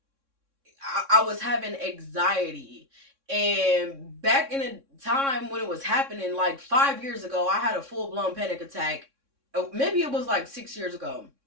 I was having anxiety. And back in the time when it was happening, like 5 years ago, I had a full-blown panic attack. Maybe it was like 6 years ago.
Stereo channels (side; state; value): left; late; 3.6 ms